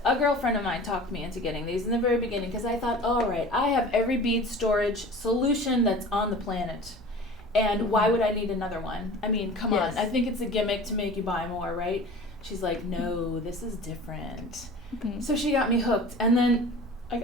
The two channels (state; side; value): normal; both; correlation 0.40